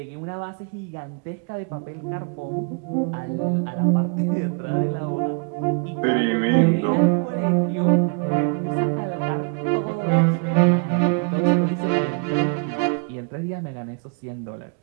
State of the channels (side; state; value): left; quieter; 37.7 dB